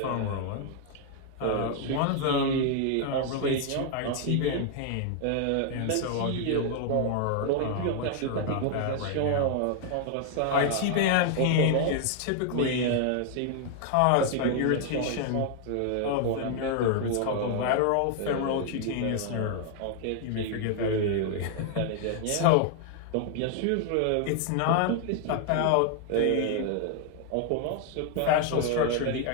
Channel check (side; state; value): both; different; correlation 0.00